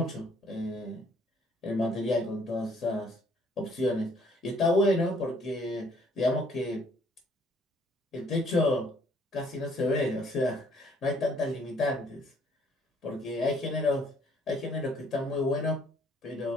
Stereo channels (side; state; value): both; normal; correlation 0.63